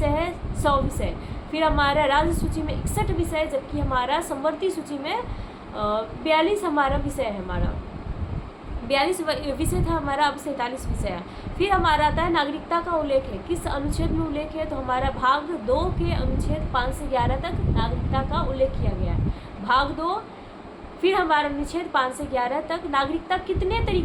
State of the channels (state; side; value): identical; both; correlation 1.00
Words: है 100 विषय, फिर हमारा राज्य सूची में 61 विषय, जबकि हमारा संवर्ती सूची में 42 हमारा विषय है, हमारा 42 विषय था हमारा, अब 47 विषय है। फिर हमारा आता है नागरिकता का उल्लेख है, किस अनुच्छेद में उल्लेख है, तो हमारा भाग 2 के अनुच्छेद 5 से 11 तक नागरिकता का उल्लेख किया गया है, भाग 2। फिर हमारा अनुच्छेद 5 से 11 तक नागरिकता कितने